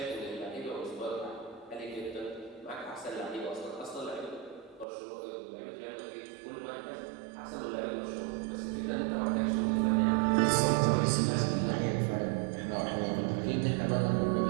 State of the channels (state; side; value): drops out; left; at 4.9 s